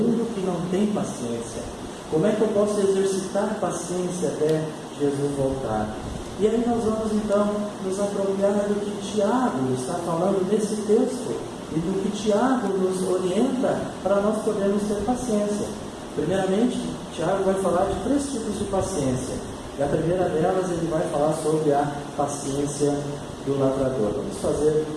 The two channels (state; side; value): identical; both; correlation 1.00